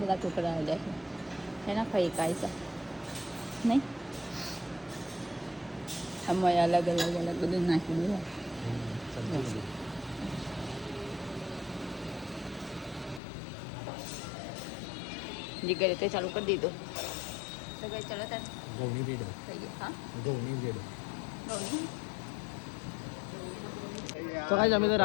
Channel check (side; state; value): right; drops out; at 13.2 s